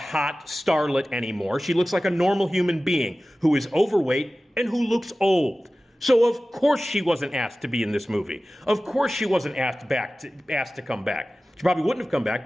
starlet anymore. She looks like a normal human being who is overweight and who looks old. So of course she wasn't asked to be in this movie. Of course she wasn't asked to come back. She probably wouldn't have come back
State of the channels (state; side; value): normal; both; correlation 0.96